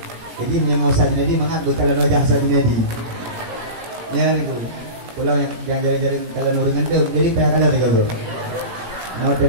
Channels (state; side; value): late; left; 17 ms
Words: Jadi menyengau Sadinadi mangat bekalan wajah Sadinadi. Ya ni tu. Pulau yang jaring-jaring kalau nurungan tu jadi kayak kalau lagi tu. Nah,